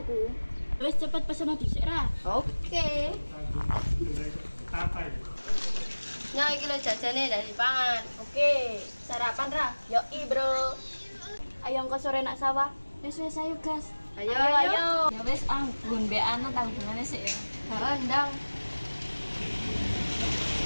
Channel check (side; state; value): both; inverted; correlation -1.00